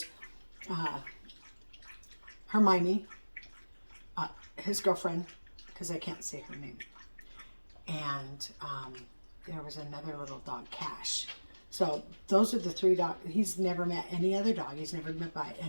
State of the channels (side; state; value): both; inverted; correlation -1.00